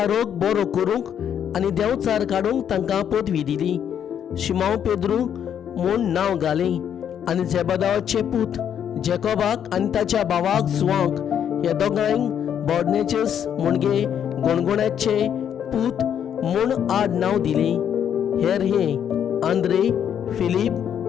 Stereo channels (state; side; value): quieter; right; 8.9 dB